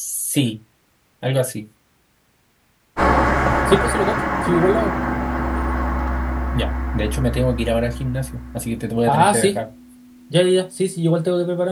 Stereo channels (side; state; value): both; identical; correlation 1.00